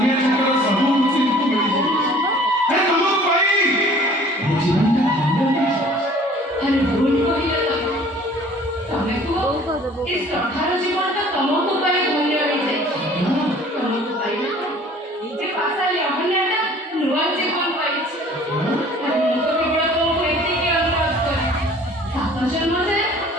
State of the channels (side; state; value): both; normal; correlation 0.51